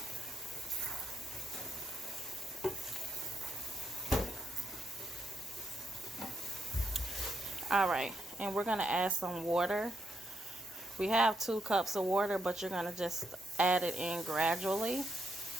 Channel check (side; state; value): both; normal; correlation 0.80